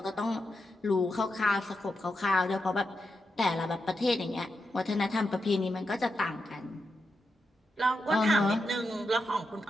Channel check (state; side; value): normal; both; correlation 0.86